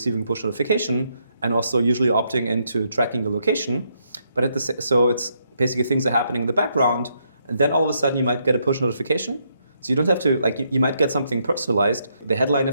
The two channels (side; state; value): both; inverted; correlation -0.76